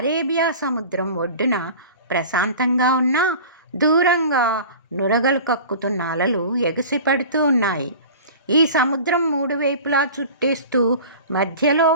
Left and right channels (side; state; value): both; inverted; correlation -0.39